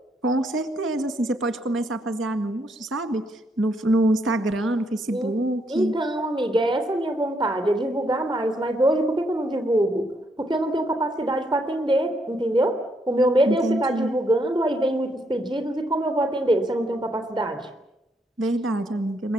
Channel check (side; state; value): both; normal; correlation 0.75